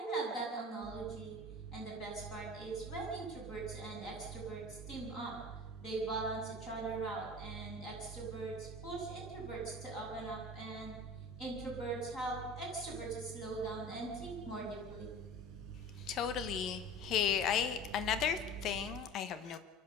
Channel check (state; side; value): normal; both; correlation 0.38